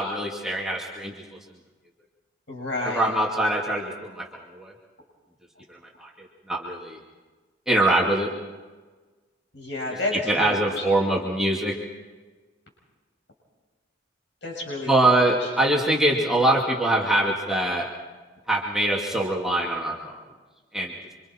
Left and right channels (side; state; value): both; normal; correlation 0.58